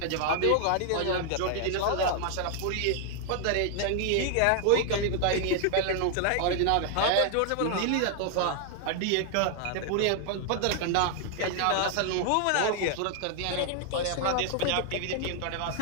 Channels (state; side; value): different; both; correlation 0.00